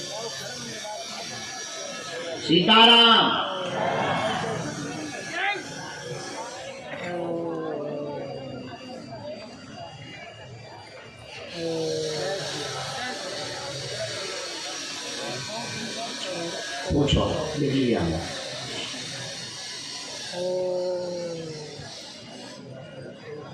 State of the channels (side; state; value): both; identical; correlation 1.00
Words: सीताराम। पूछो, लिख लिया हमने।